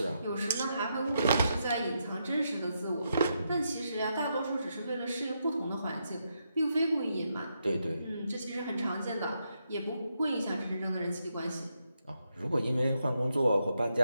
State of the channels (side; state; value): both; inverted; correlation -0.82